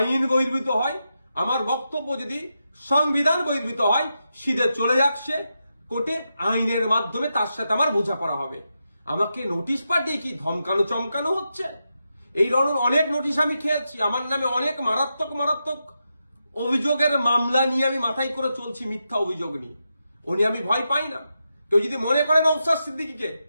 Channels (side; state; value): both; inverted; correlation -0.86